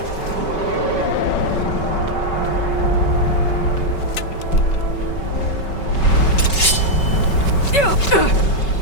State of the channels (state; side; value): late; right; 5.3 ms